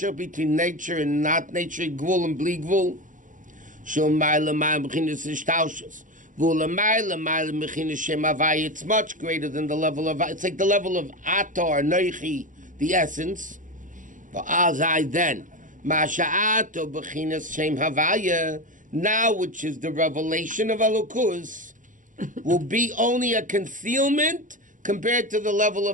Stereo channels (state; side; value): late; left; 0.38 ms